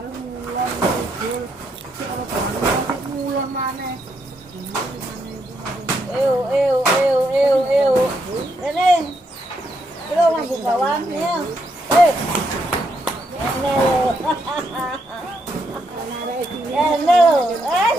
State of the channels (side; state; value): both; normal; correlation 0.77